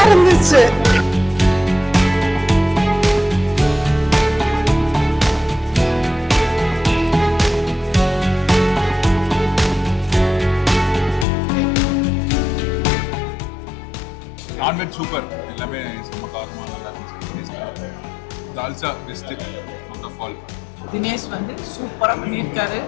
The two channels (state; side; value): drops out; right; at 11.2 s